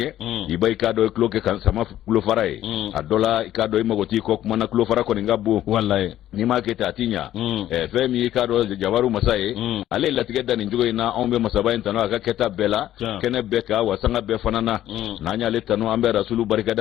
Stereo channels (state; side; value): quieter; right; 12.8 dB